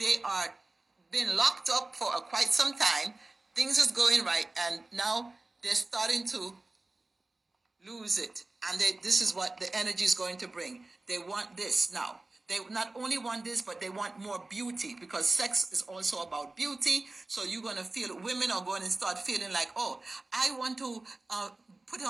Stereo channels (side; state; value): left; quieter; 3.1 dB